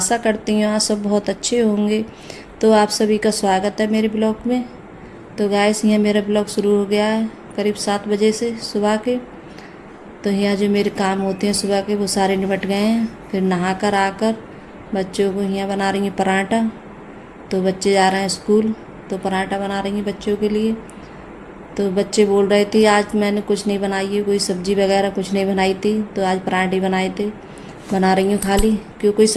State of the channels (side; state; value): both; identical; correlation 1.00